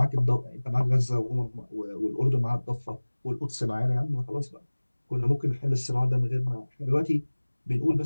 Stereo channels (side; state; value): both; inverted; correlation -1.00